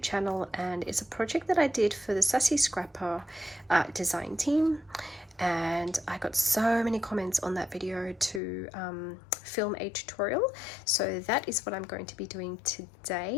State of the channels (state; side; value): drops out; right; at 8.4 s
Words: and it's a project that I did for the Sassy Scrapper design team. And I got so many comments on that video to film a tutorial, so that is what I'm going to be doing